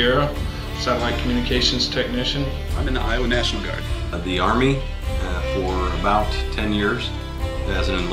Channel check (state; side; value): identical; both; correlation 1.00